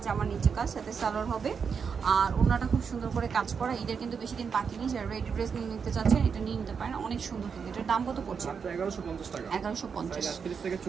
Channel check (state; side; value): quieter; left; 6.2 dB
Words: আমার নিচে কাজ, সাথে সালোয়ার হবে। আর ওনাটা খুব সুন্দর করে কাজ করা। ঈদের কিন্তু বেশি দিন বাকি নেই। যারা রেডি ড্রেস নিয়ে নিতে চাচ্ছেন এটা নিয়ে নিতে পারেন, অনেক সুন্দর। কিন্তু এটার দাম কত পড়ছে? 1150 টাকা। 1150,